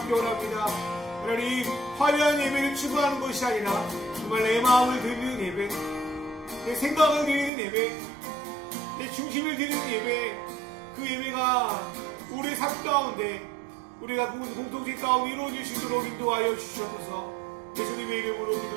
원합니다. 하나님, 화려한 예배를 추구하는 것이 아니라 정말 내 마음을 드리는 예배, 내 생각을 드리는 예배, 내 중심을 드리는 예배, 그 예배가 우리의 삶 가운데, 우리가 공동체 가운데 이루어질 수 있도록 인도하여 주시옵소서. 예수님의 이름으로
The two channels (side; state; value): left; drops out; at 7.5 s